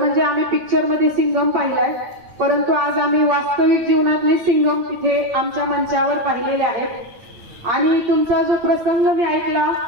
आम्ही पिक्चर मध्ये सिंघम पाहिलाय, परंतु आज आम्ही वास्तविक जीवनातले सिंघम तिथे आमच्या मंचावर पाहिलेले आहेत. आणि तुमचा जो प्रसंग मी ऐकला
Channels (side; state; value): left; late; 9.1 ms